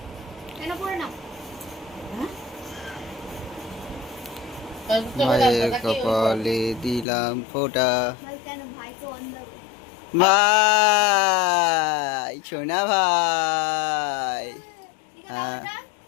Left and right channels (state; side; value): drops out; right; at 7.1 s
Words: কেন পড়ে না? ভাইয়ের কপালে দিলাম ফোঁটা। কেন ভাই তো অন্ধ। ভাই সোনা ভাই,